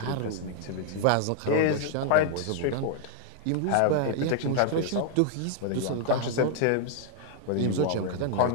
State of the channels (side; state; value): both; different; correlation -0.01